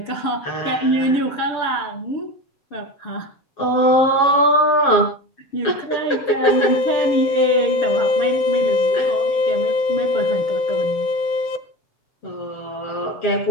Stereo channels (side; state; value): right; late; 7.3 ms